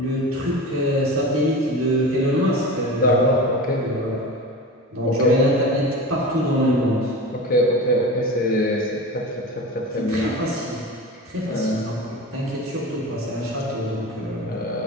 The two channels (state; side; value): normal; both; correlation 0.31